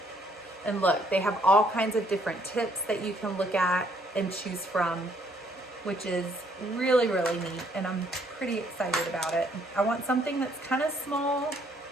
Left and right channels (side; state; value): both; normal; correlation 0.67